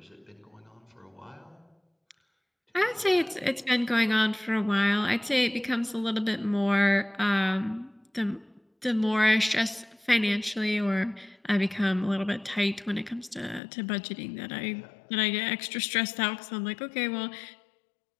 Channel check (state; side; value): drops out; right; at 13.6 s